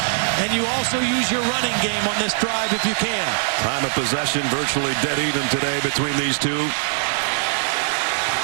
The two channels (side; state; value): left; silent; digital silence